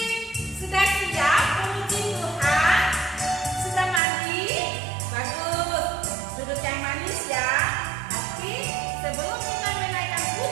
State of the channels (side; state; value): left; drops out; at 4.0 s